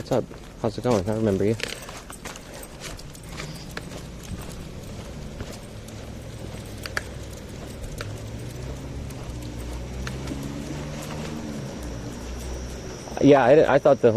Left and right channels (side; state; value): both; identical; correlation 1.00